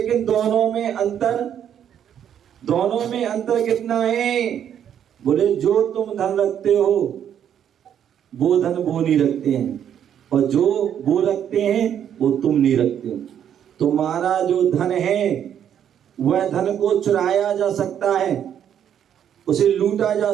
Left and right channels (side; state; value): left; quieter; 9.3 dB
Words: दोनों में अंतर कितना है? बोले जो तुम धन रखते हो वो धन वो नहीं रखते हैं, और जो वो रखते हैं वो तुम नहीं रखते हो। तुम्हारा जो धन है वह धन को चुराया जा सकता है, उसे लूटा जा